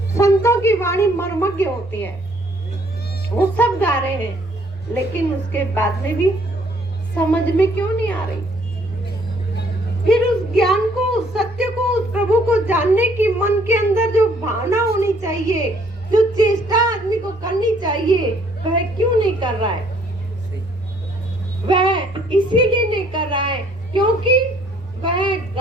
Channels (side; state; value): both; normal; correlation 0.63